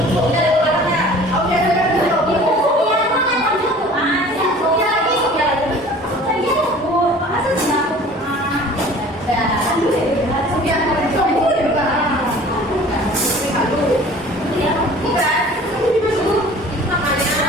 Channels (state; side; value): normal; both; correlation 0.46